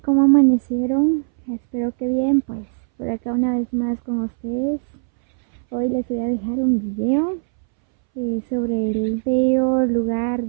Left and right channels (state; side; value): silent; left; 64 dB below the other